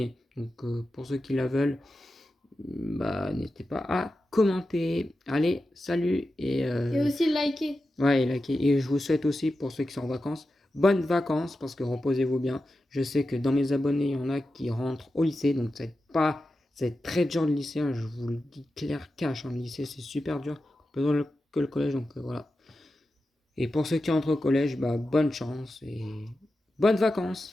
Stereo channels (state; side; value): normal; both; correlation 0.91